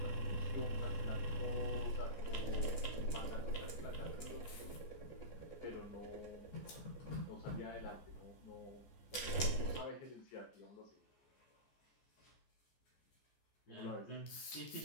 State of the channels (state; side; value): late; right; 14 ms